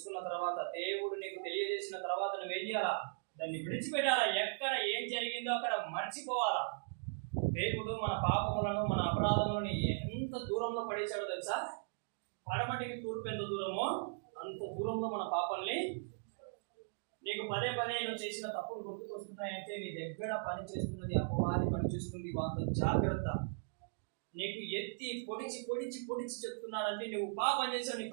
తర్వాత, దేవుడు నీకు తెలియజేసిన తర్వాత నువ్వేం చేయాలా? దాన్ని విడిచిపెట్టాలా. ఎక్కడ ఏం జరిగిందో అక్కడ మర్చిపోవాలా. దేవుడు మన పాపములను, మన అపరాధములను ఎంత దూరంలో పడేశాడో తెలుసా? పడమటికి తూర్పు ఎంత దూరమో అంత దూరంలో మన పాపాలని. నీకు పదే పదే నువ్వు చేసిన తప్పులు గుర్తుకొస్తున్నాయంటే నీ దగ్గర పని చేస్తున్నది అపవాది పని చేస్తుంది. అంత జాగ్రత్త. నీకు ఎత్తి పొడిచి పొడిచి పొడిచి చెప్తున్నాడంటే నువ్వు పాపం చేసావు, నీ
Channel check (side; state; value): left; silent; digital silence